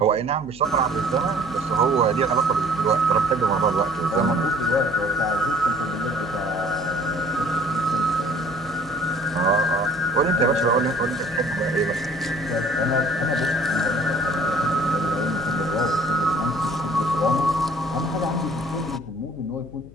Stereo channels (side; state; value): left; noise; hum, 20 dB below the sound